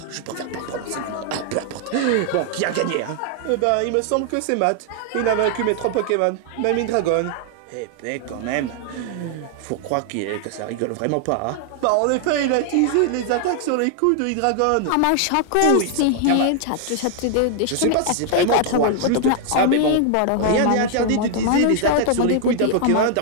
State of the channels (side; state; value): both; different; correlation 0.00